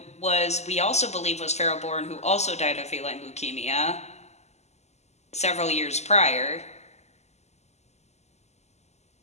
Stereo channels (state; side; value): late; right; 0.32 ms